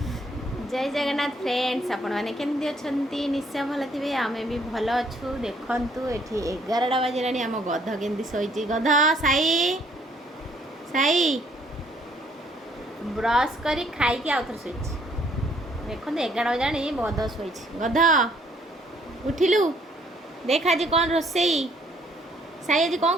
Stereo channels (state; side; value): normal; both; correlation 0.65